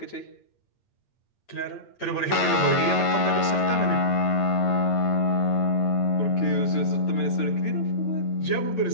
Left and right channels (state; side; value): late; right; 9.4 ms